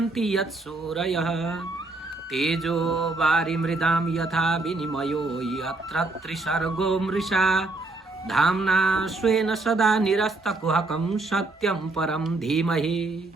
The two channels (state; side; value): quieter; left; 3.1 dB